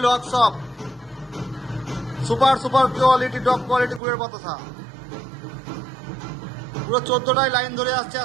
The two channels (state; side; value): drops out; left; at 4.0 s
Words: workshop, super super quality top quality গুড়ের বাতাসা। পুরো 14টাই লাইন ধরে আসছে,